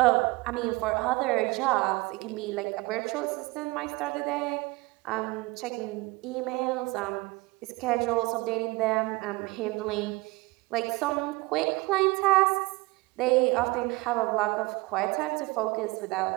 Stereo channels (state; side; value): quieter; left; 23.3 dB